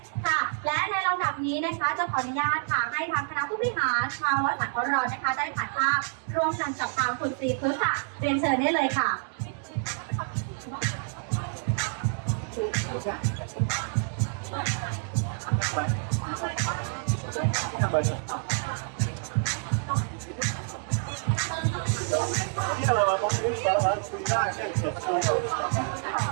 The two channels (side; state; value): left; silent; 59 dB below the other